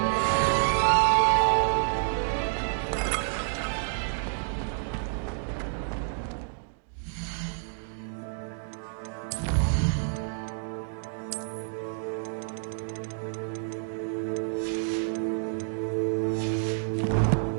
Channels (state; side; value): silent; left; digital silence